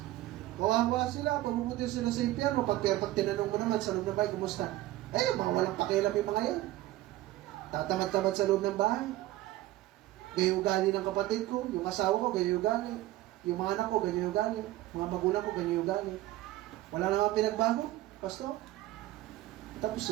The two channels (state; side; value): quieter; left; 16.1 dB